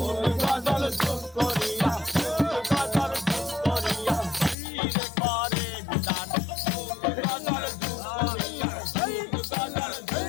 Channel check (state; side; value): drops out; right; at 4.5 s